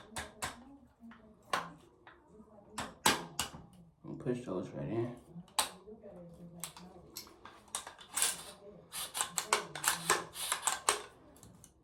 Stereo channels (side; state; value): both; identical; correlation 1.00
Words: And push those right in.